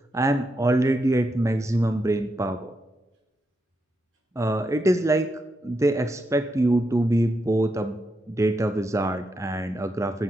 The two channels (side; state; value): both; normal; correlation 0.83